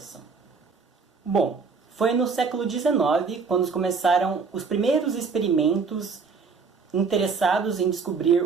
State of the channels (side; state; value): left; quieter; 5.1 dB